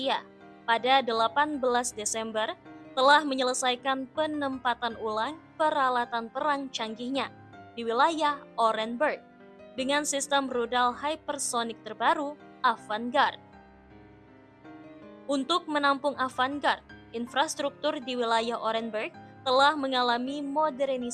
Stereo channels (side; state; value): both; identical; correlation 1.00